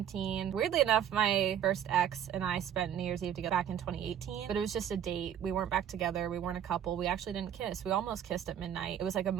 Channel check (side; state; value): left; quieter; 9.7 dB